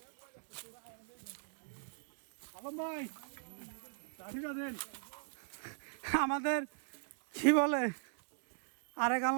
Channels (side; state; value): left; silent; digital silence